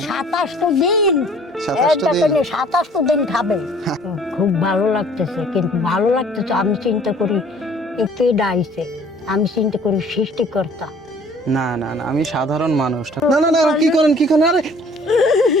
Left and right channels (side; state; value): both; normal; correlation 0.54